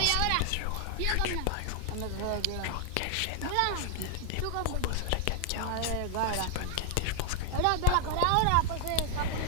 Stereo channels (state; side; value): different; both; correlation 0.00